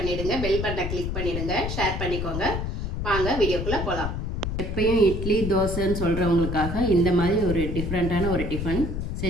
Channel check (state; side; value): noise; left; rumble, 3 dB below the sound